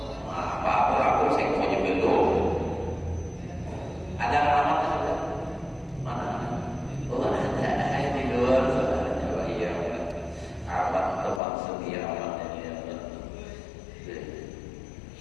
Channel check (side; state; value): right; drops out; at 11.4 s